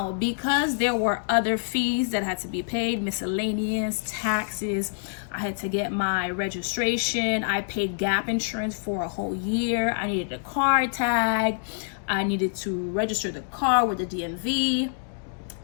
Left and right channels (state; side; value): silent; right; digital silence